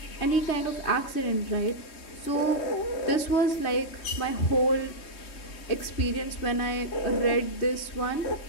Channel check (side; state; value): right; late; 3.2 ms